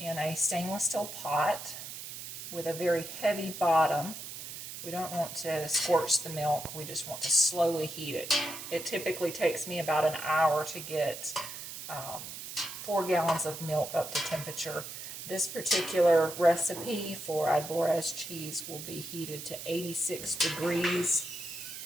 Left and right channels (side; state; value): right; noise; hiss, 9 dB below the sound